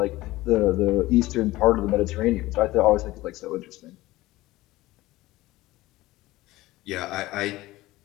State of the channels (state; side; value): quieter; right; 18.1 dB